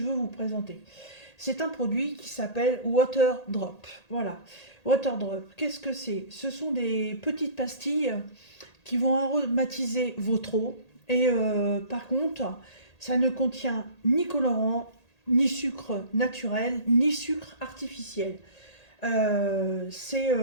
veux vous présenter? C'est un produit qui s'appelle Water Drop. Voilà. Water Drop, qu'est-ce que c'est? Ce sont des petites pastilles qui vont aromatiser votre eau. Et par contre, ça ne contient ni colorant, ni sucre naturel, ni sucre artificiel. Euh, c'est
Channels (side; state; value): right; late; 1.8 ms